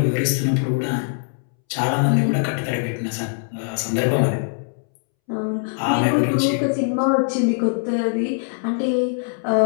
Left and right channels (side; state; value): right; silent; 64 dB below the other